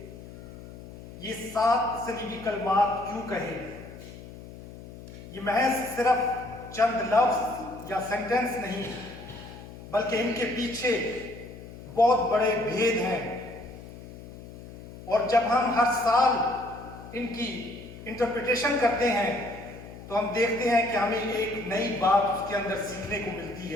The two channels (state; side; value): noise; left; hum, 15 dB below the sound